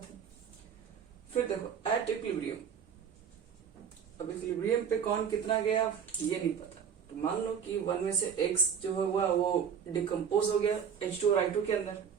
है। फिर देखो एट इक्विलिब्रियम, अब इक्विलिब्रियम पे कौन कितना गया ये नहीं पता, तो मान लो कि 1 में से X जो हुआ वो डिकम्पोज हो गया H2 और I2 के अंदर,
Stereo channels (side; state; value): left; quieter; 7.5 dB